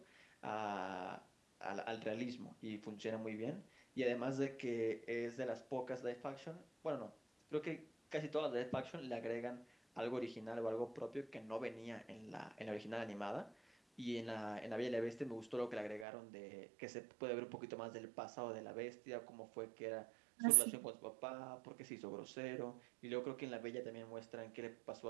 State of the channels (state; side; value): drops out; left; at 16.1 s